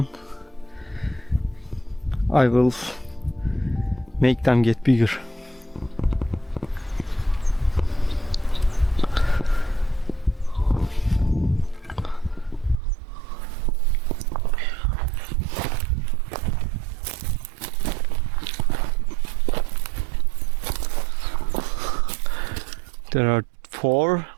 I will make them get bigger. There are 4,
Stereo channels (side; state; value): left; drops out; at 12.8 s